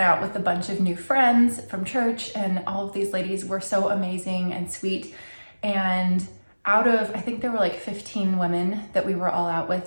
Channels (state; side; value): inverted; both; correlation -1.00